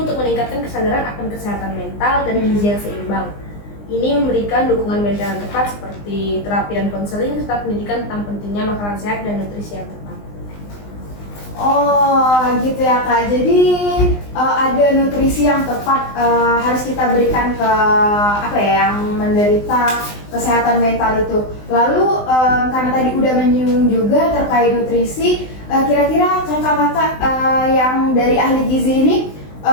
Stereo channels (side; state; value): right; late; 20 ms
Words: meningkatkan kesadaran akan kesehatan mental dan gizi yang seimbang. Ini memberikan dukungan mental yang tepat seperti terapi dan konseling serta pendidikan tentang pentingnya makanan sehat dan nutrisi yang tepat. Oh gitu ya Kak, jadi ada nutrisi yang tepat harus kita berikan ke apa ya yang menderita kesehatan mental itu. Lalu karena tadi udah menyinggung juga terkait nutrisi, kira-kira kakak-kakak yang dari ahli gizi ini